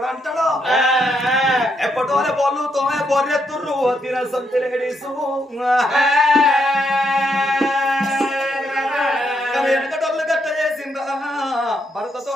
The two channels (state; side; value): normal; both; correlation 0.78